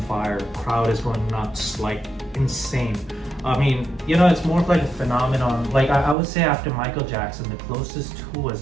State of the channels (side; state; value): left; drops out; at 6.2 s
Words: fire, crowd is going nuts, like insane. I mean, you know, it's more of like a phenomenon. Like I would say after Michael Jackson, the closest, who was